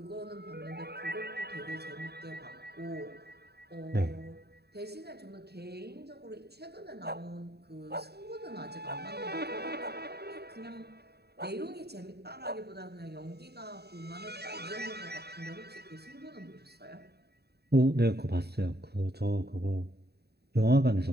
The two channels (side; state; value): left; late; 0.47 ms